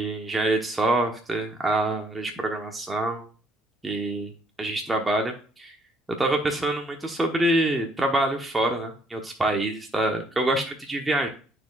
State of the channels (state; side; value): normal; both; correlation 0.66